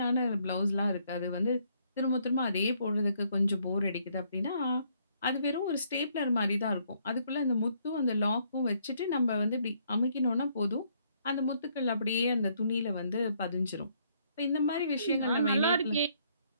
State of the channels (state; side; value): inverted; both; correlation -0.69